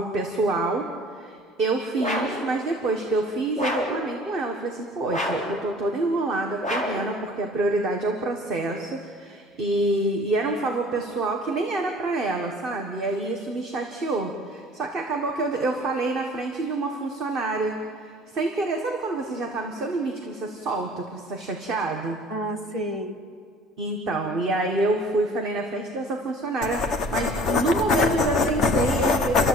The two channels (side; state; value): both; normal; correlation 0.49